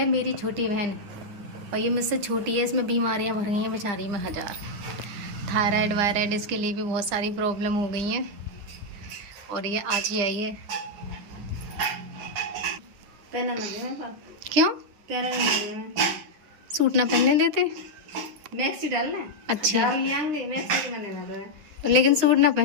मेरी छोटी बहन, और ये मुझसे छोटी है, इसमें बीमारियां भर गई हैं बेचारी में हजार। थायराइड वायराइड इसके लिए भी बहुत सारी प्रॉब्लम हो गई हैं, और ये आज ही आई है। पहना ना दे मेरे पास। क्यों? पहना नहीं दे मैं। सूट ना पहनने देते? मैक्सी डालना है। अच्छा। डाल लियांगे मैक्सी मैंने ना दे। लेकिन सूट ना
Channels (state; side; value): late; left; 9.9 ms